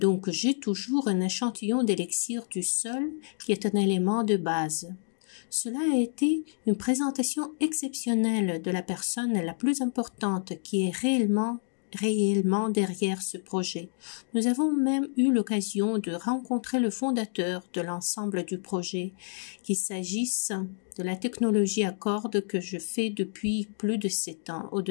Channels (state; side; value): silent; right; digital silence